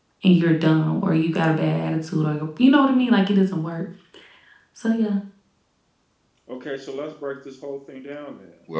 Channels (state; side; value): identical; both; correlation 1.00